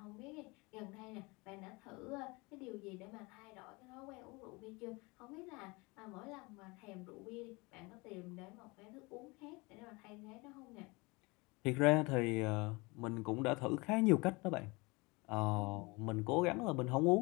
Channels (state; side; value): quieter; right; 25.9 dB